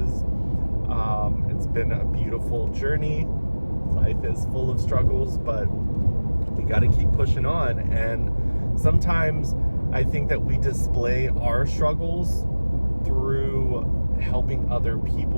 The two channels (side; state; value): both; inverted; correlation -1.00